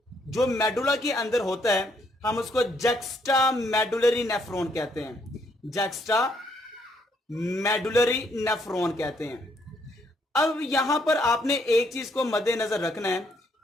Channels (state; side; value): normal; both; correlation 0.71